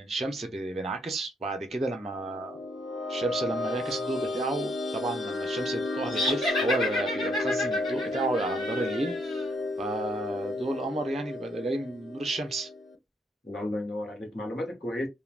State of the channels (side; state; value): both; normal; correlation 0.72